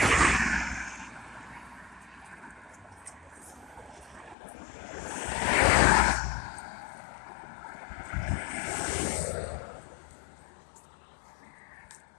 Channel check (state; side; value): drops out; right; at 4.4 s